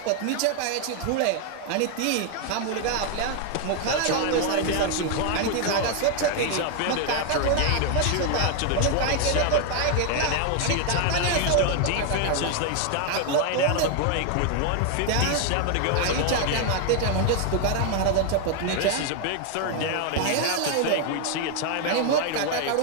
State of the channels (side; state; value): both; different; correlation 0.00